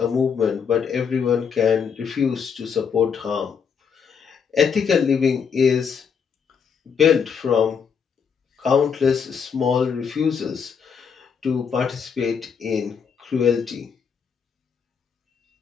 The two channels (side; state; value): right; quieter; 6.6 dB